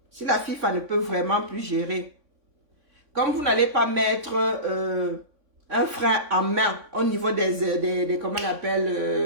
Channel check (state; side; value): late; left; 3.6 ms